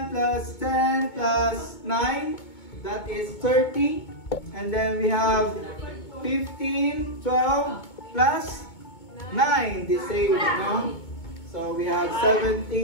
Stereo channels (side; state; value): right; late; 2.2 ms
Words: plus 10 plus 9. That is 30. And then we have 15, 12 plus 9. The same, no? So we have